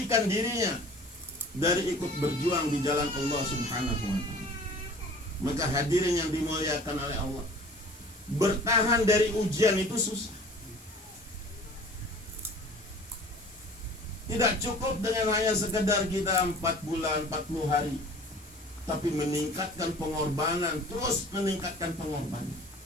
dirinya dari ikut berjuang di jalan Allah Subhanahu wa ta'ala. Maka hadirin yang dimuliakan oleh Allah, bertahan dari ujian itu susah. Tidak cukup dengan hanya sekedar kita 4 bulan, 40 hari, tapi meningkatkan pengorbanan, terus meningkatkan pengorbanan.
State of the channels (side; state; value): both; normal; correlation 0.45